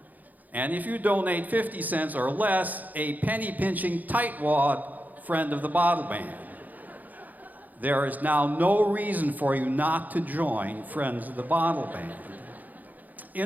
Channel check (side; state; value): left; late; 0.081 ms